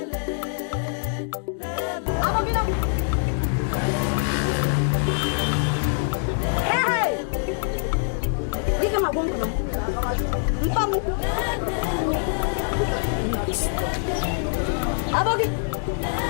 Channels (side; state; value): right; silent; digital silence